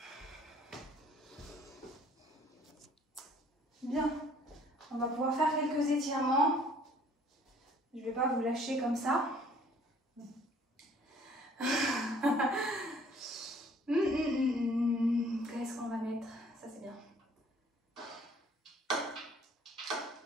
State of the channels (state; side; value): normal; both; correlation 0.57